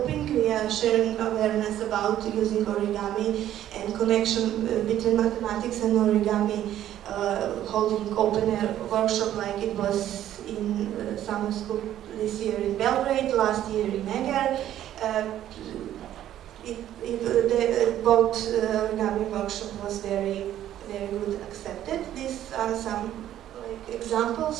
We are sharing awareness about using origami and connection between mathematics and origami, holding open air workshop like it was in summer school this year in Belgrade, last year in Eger. Both origami workshop was very good accepted. These are some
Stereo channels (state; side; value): quieter; left; 11.9 dB